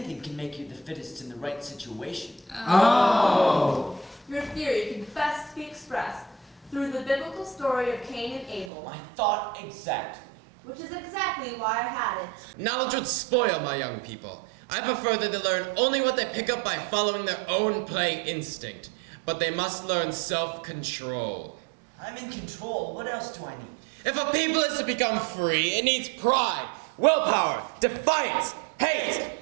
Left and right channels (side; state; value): left; drops out; at 8.7 s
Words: can make you the fittest in the right situation. Oh. Your theory can best be expressed through the biblical story of Cain and Abel, I thought exactly. which is exactly why I had it. Knowledge would spoil my young people. I prefer that they learn only what they pick up by following their own play instinct. But they must learn self-control. I'm in control. What else do I need? If a people is to become free, it needs pride, willpower, defiance, hate,